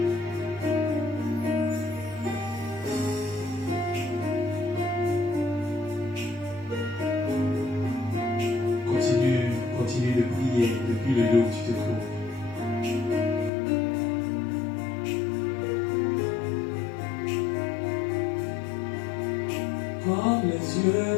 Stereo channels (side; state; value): right; drops out; at 13.5 s